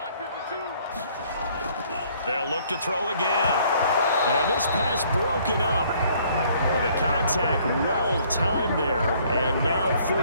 They'll look to throw again. And this pass broken up. The contact well timed there, and now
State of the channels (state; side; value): inverted; both; correlation -0.61